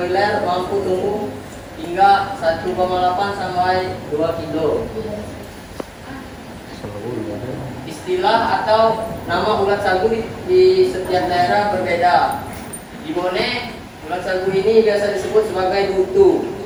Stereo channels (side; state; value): both; identical; correlation 1.00